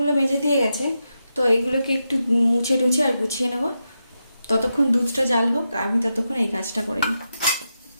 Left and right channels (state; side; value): inverted; both; correlation -0.87